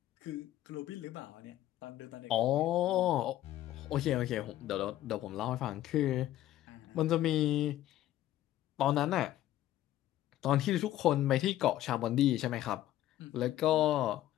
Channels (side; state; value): right; quieter; 13.7 dB